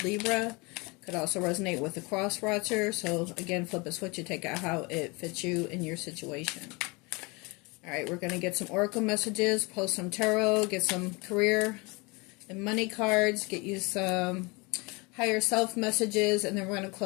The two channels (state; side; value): quieter; right; 27.1 dB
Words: Libra. Could also resonate with the cross watcher. So again, flip a switch and take out how it fits you in your situation. Alright, we're going to get some oracle messages, pull some tarot, get some career and money cards, get you some higher self messages, and then we're going to